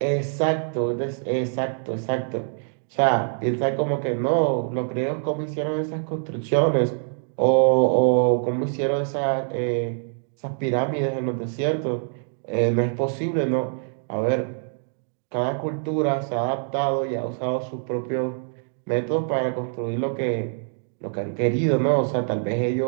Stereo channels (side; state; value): left; silent; 62 dB below the other